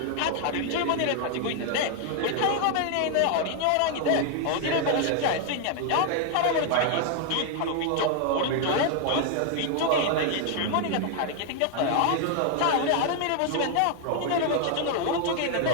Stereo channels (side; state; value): both; different; correlation 0.00